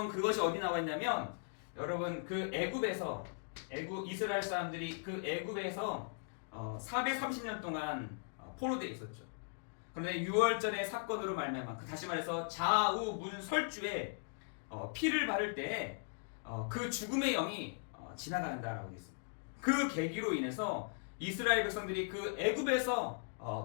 그것이 어디 나와 있냐면, 여러분 그 이스라엘 사람들이 그 애굽에서 430년 동안 포로되어 있었죠. 그런데 6월절의 사건으로 말미암아, 다시 말해서 좌우문설주에 피를 바를 때 그 죽음의 영이 지나간다라고 되어 있습니다. 그 계기로 인해서 이스라엘 백성들이 그 애굽에서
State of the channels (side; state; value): right; silent; digital silence